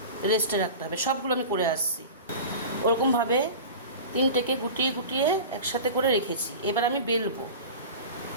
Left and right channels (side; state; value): both; inverted; correlation -0.34